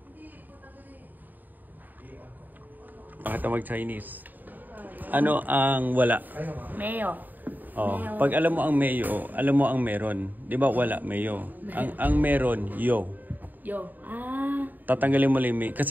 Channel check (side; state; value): left; late; 0.087 ms